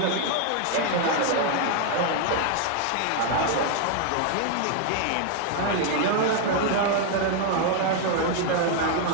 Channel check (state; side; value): different; both; correlation 0.01